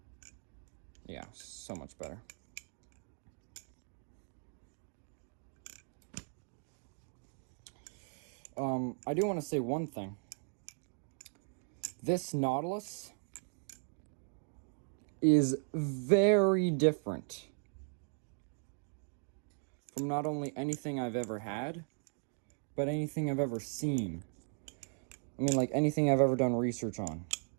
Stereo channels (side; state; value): left; silent; 53 dB below the other